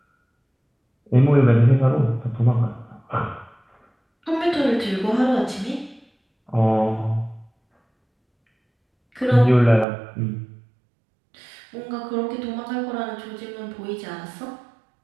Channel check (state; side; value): drops out; left; at 9.9 s